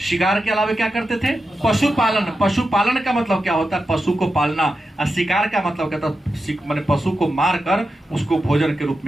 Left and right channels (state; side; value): normal; both; correlation 0.90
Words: के अलावा क्या करते थे? पशुपालन। पशुपालन का मतलब क्या होता है? पशु को पालना। और शिकार का मतलब क्या था? मैंने पशु को मारकर उसको भोजन के रूप